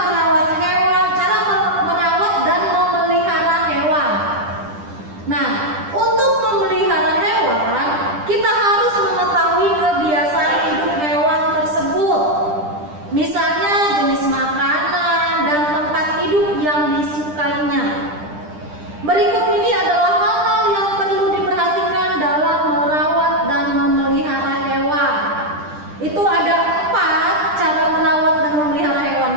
hewan, cara merawat dan memelihara hewan. Nah, untuk memelihara hewan, kita harus mengetahui kebiasaan hidup hewan tersebut. Misalnya jenis makanan dan tempat hidup yang disukainya. Berikut ini adalah hal-hal yang perlu diperhatikan dalam merawat dan memelihara hewan. Itu ada 4 cara merawat dan memelihara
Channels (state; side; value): late; left; 10 ms